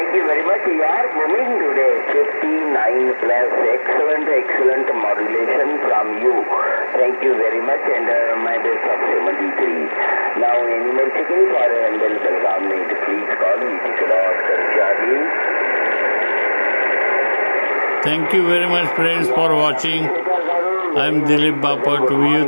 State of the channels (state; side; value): inverted; both; correlation -1.00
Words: very much. You are moving today 59+. Excellent modulation from you. Thank you very much, and my best of 73. Now, any more checking for Handel Belgaum need, please call me. Charlie. Thank you very much, friends, for watching. I am Dilip Bapat.